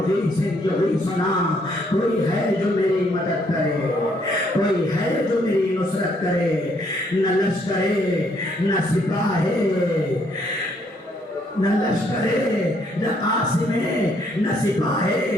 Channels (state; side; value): normal; both; correlation 0.69